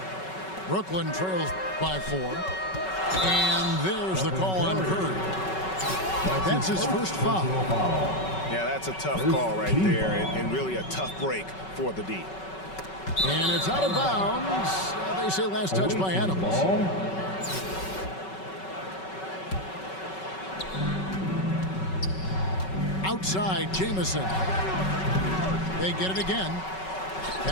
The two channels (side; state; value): right; late; 5.3 ms